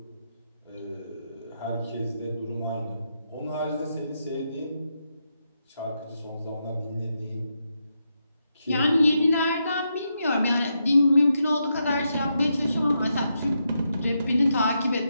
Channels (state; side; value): inverted; both; correlation -0.83